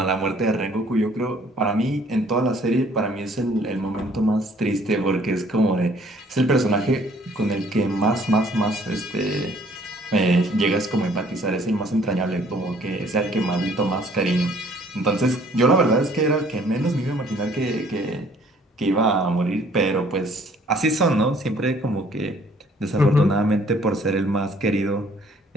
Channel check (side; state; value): both; normal; correlation 0.59